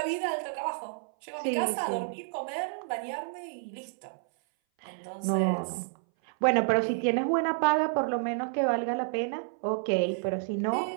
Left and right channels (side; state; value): left; silent; 58 dB below the other